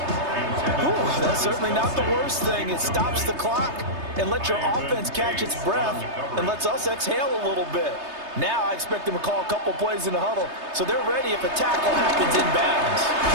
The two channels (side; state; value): left; late; 3.3 ms